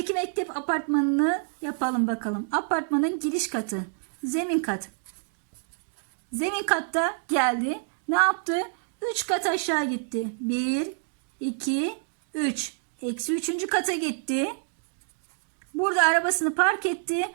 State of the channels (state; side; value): silent; left; digital silence